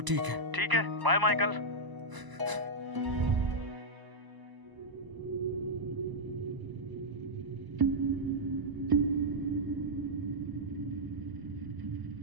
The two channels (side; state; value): left; late; 1.0 ms